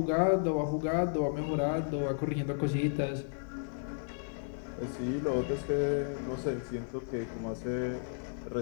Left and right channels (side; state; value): right; silent; digital silence